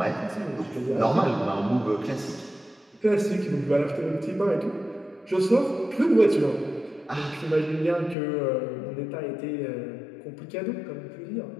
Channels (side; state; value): right; drops out; at 8.2 s